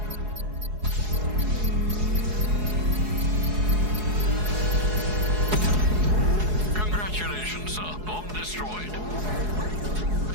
Congratulations, sir. Bomb destroyed.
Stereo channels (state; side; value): late; left; 4.7 ms